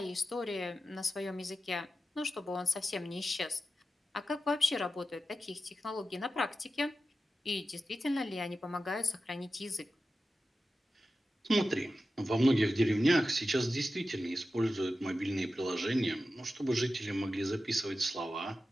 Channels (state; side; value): normal; both; correlation 0.92